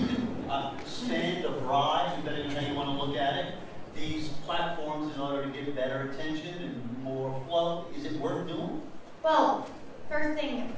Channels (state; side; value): identical; both; correlation 1.00